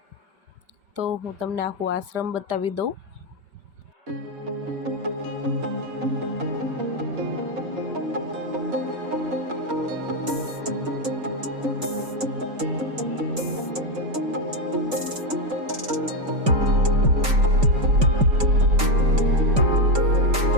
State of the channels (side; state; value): left; late; 5.1 ms